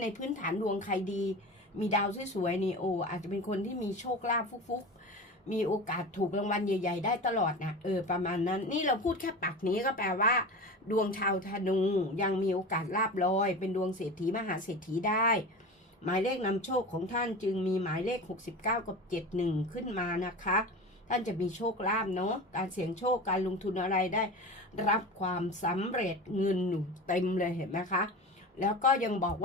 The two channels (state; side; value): normal; both; correlation 0.31